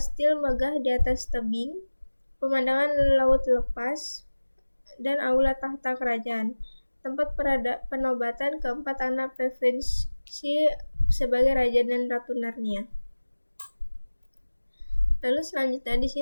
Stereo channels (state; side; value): inverted; both; correlation -1.00